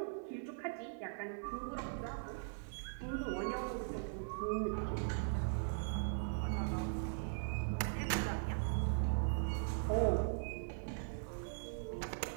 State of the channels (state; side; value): silent; left; 51 dB below the other